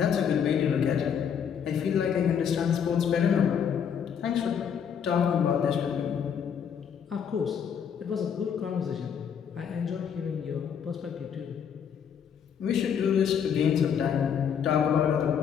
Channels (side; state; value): right; quieter; 7.8 dB